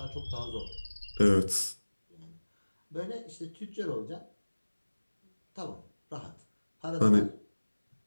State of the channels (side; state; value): both; inverted; correlation -1.00